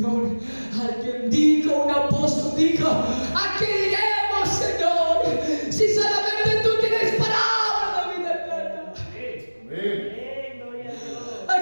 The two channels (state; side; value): inverted; both; correlation -1.00